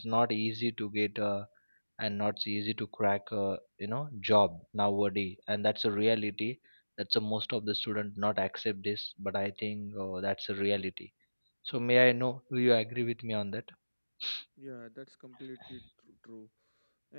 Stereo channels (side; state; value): both; inverted; correlation -1.00